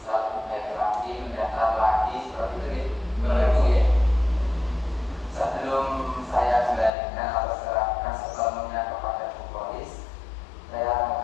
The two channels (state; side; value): drops out; right; at 6.9 s